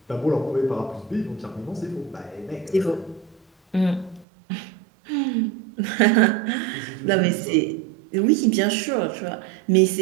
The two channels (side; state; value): left; drops out; at 4.2 s